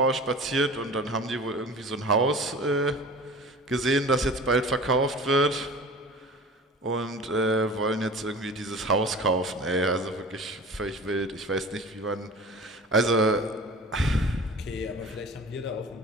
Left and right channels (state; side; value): normal; both; correlation 0.39